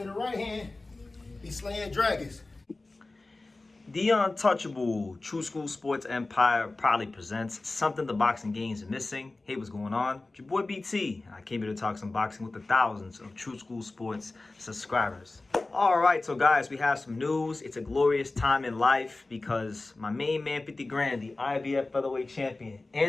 the right hand, be slaying dragons. The Untouchable True School Sports Empire proudly presents something the boxing games are missing. Hey, what's going on? It's your boy BT. I came here to talk some boxing with the thousands of True School Sports subscribers. All right, so guys, we have some news. It's a glorious time in life because my main man, 50 grand, the IBF featherweight champion,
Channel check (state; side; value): quieter; right; 3.2 dB